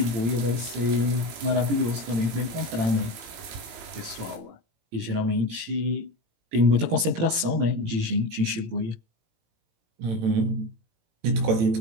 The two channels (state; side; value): late; left; 18 ms